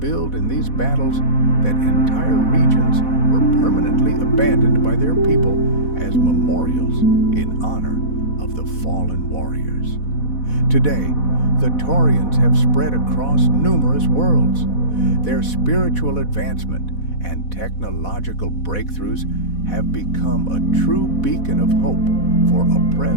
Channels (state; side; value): late; right; 4.1 ms